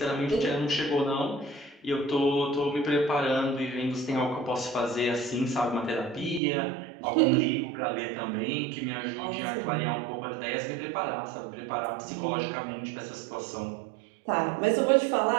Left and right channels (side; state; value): left; drops out; at 6.4 s